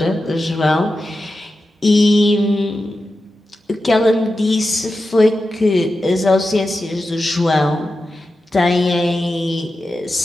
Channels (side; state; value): both; normal; correlation 0.91